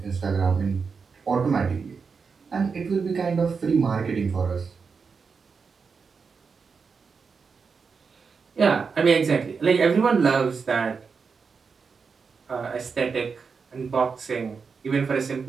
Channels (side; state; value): left; quieter; 5.4 dB